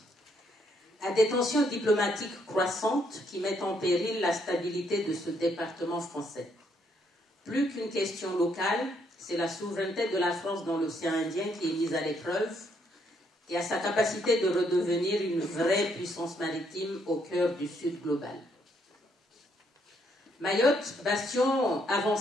à des tensions diplomatiques croissantes qui mettent en péril la stabilité de ce département français. Plus qu'une question locale, c'est la souveraineté de la France dans l'océan Indien qui est mise à l'épreuve et à sa capacité de redevenir une vraie puissance maritime au cœur du Sud global. Mayotte, bastion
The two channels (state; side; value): normal; both; correlation 0.72